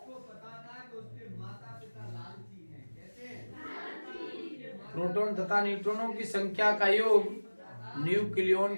प्रोटॉन तथा न्यूट्रॉनों की संख्या का योग न्यूक्लियन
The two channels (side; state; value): both; inverted; correlation -1.00